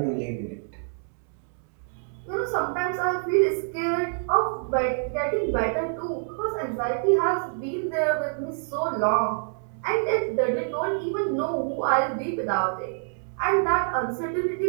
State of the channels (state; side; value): silent; left; digital silence